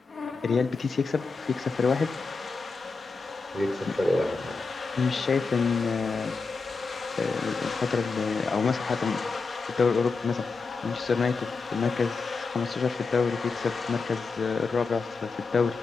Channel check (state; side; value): quieter; right; 4.3 dB